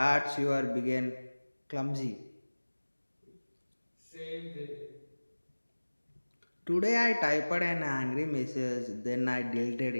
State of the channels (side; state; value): both; inverted; correlation -1.00